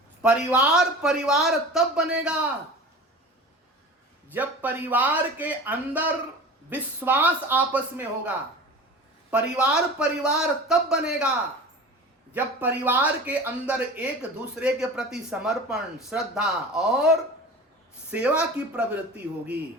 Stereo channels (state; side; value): normal; both; correlation 0.36